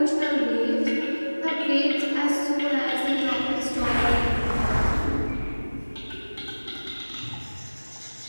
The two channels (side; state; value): both; inverted; correlation -1.00